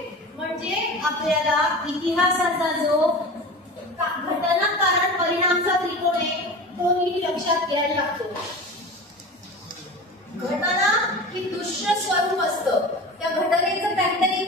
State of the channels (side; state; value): both; normal; correlation 0.32